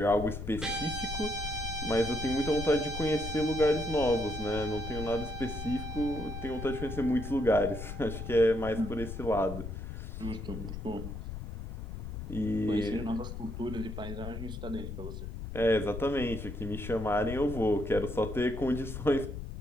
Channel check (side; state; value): left; noise; rumble, 7 dB below the sound